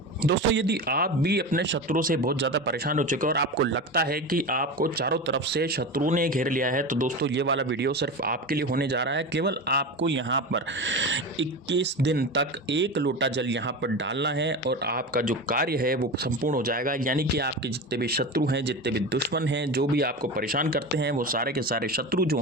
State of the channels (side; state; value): both; normal; correlation 0.25